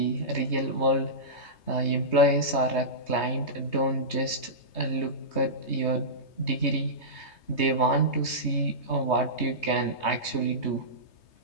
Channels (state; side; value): late; right; 3.2 ms